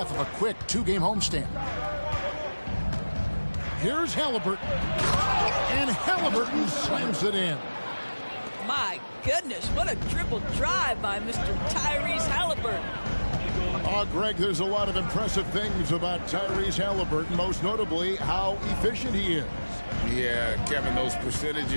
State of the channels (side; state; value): both; inverted; correlation -1.00